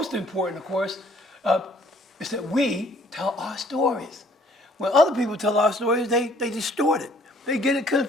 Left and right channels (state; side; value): normal; both; correlation 0.59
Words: important, of course, is that we tell our stories. When other people tell our stories, they distort it. They get it